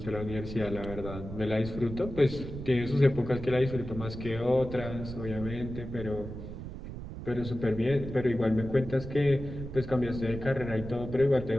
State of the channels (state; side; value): noise; right; rumble, 9 dB below the sound